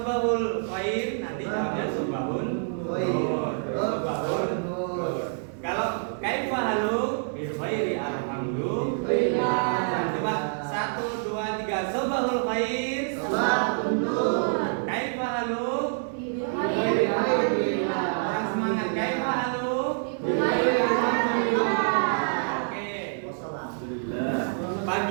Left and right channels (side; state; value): left; silent; digital silence